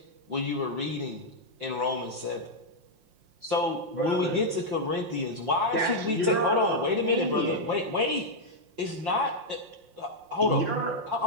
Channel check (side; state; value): left; late; 5.7 ms